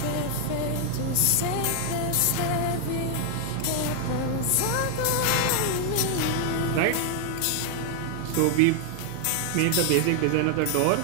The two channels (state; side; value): different; both; correlation 0.00